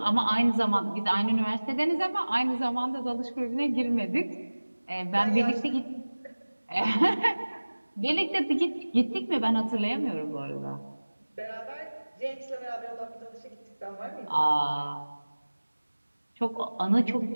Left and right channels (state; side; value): inverted; both; correlation -1.00